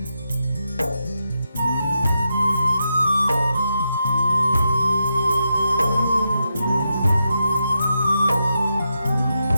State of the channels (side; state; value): both; inverted; correlation -0.85